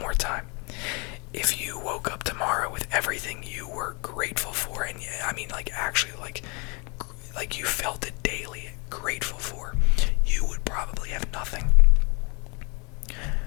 time. If you woke up tomorrow with everything you were grateful for, and I mean like actually like you felt it daily, grateful for, you would probably have nothing.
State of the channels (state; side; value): quieter; right; 31.4 dB